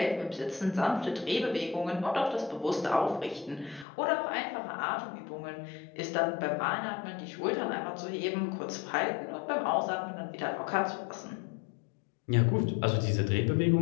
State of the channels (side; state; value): right; drops out; at 3.9 s